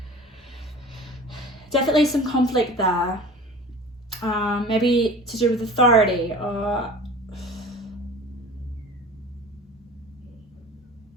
definitely some conflict there. Maybe to do with authority or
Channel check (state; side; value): normal; both; correlation 0.40